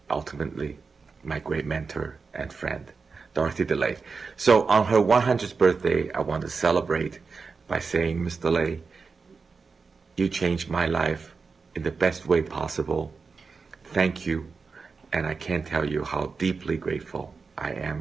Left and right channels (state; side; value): quieter; left; 4.8 dB